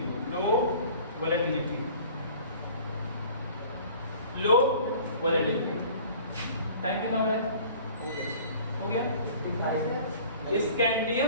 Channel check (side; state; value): both; inverted; correlation -0.47